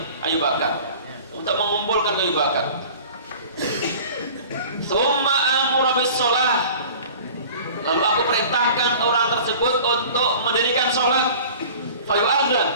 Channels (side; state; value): both; inverted; correlation -0.43